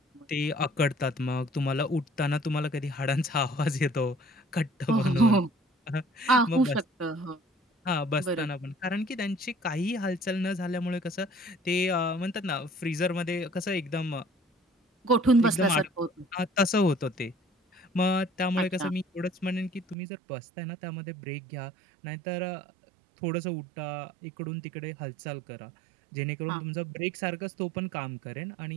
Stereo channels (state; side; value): drops out; left; at 20.0 s